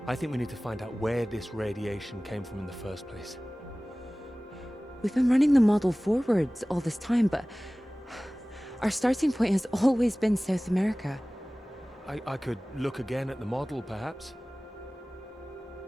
I think we need to find out where this radiation came from in the first place. We've been running the model forwards all this time, but our starting point has always been South America. I could look again at the model, perhaps.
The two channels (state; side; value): normal; both; correlation 0.98